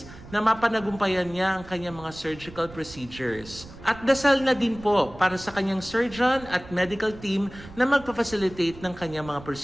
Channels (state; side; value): noise; right; rumble, 18 dB below the sound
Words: na mapanagumpayan niya ang kanyang mga surgical procedures. At dasal na din po para sa kanyang surgeon at medical team na magpa-facilitate ng kanyang mga